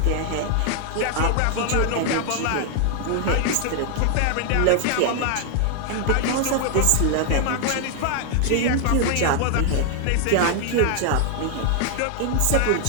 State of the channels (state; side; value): different; both; correlation 0.00